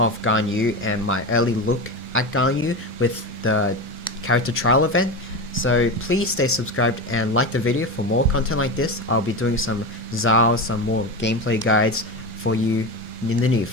Ganyu and my early look at Ganyu with the character trial event. So please stay subscribed and like the video for more content like this. I'll be doing some Zao some more gameplay guides for you in the near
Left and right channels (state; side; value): normal; both; correlation 0.21